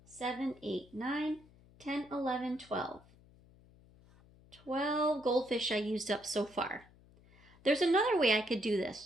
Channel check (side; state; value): left; noise; hum, 26 dB below the sound